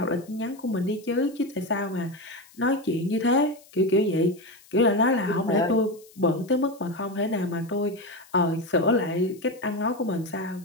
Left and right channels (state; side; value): noise; left; hiss, 26 dB below the sound